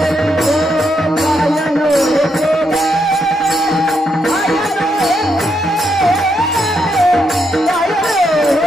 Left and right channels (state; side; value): normal; both; correlation 0.79